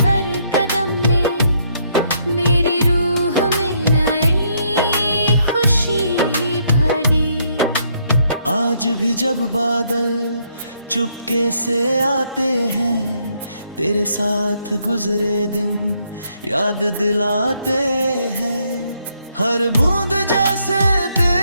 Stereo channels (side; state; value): both; inverted; correlation -0.72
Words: हर कदम ने मेरी रूह में नई खुशी भरी। आज भी जब बादल चुपके से आते हैं, तेरे साथ गुजरे दिन याद दिलाते हैं। हर बूंद जैसे